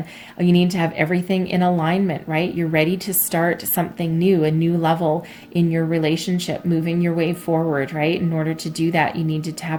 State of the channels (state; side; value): identical; both; correlation 1.00